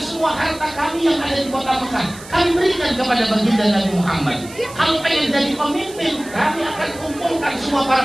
semua harta kami yang ada di kota Mekah, kami berikan kepada baginda Nabi Muhammad. Kalau pengen jadi pemimpin, kami akan kumpulkan semua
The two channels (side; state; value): right; noise; hiss, 18 dB below the sound